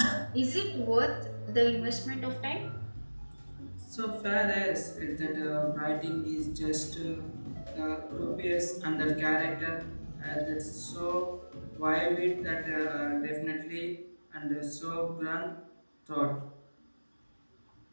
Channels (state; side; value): inverted; both; correlation -1.00